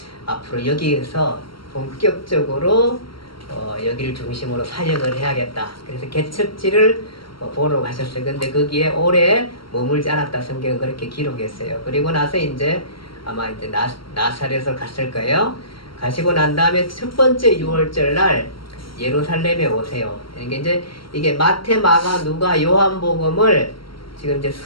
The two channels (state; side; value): late; right; 0.74 ms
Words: 앞으로 여기에서 본격적으로 여기를 중심으로 사역을 해야겠다. 그래서 개척지를 보러 가셨어요. 근데 거기에 오래 머물지 않았다. 성경은 그렇게 기록했어요. 그리고 나서 이제 아마 이제 나사렛을 갔을 거예요. 가시고 난 다음에 첫 번째 6월절 날 예루살렘에 오세요. 그러니까 이제 이게 마태, 마가, 누가, 요한복음을 지금 이제